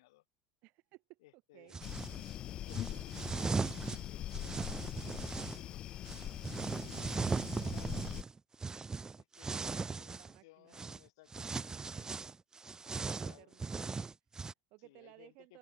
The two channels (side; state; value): both; normal; correlation 0.73